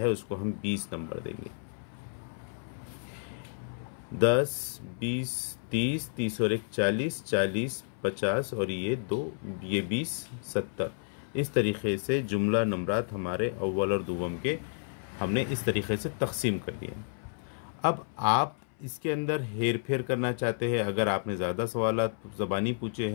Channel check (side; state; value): right; silent; 57 dB below the other